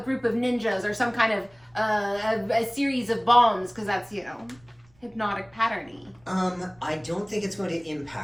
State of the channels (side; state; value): right; noise; rumble, 30 dB below the sound